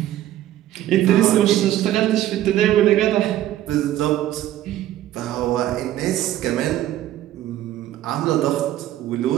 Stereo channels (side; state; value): left; quieter; 13.3 dB